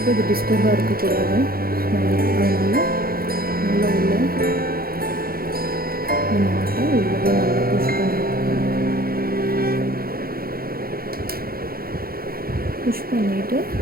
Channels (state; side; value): late; left; 0.43 ms